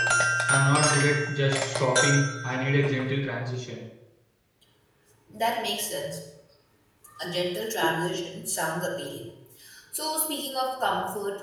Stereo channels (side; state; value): both; identical; correlation 1.00